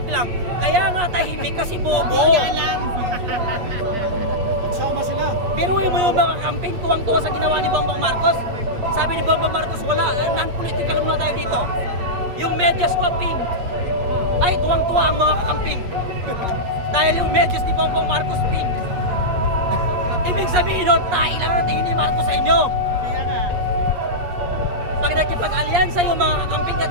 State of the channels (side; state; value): left; late; 8.4 ms